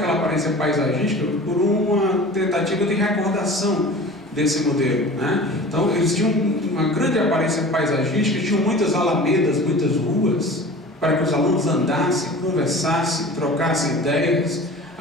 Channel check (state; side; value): normal; both; correlation 0.39